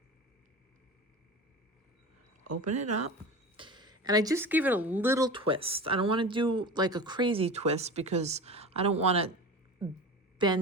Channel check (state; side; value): normal; both; correlation 0.32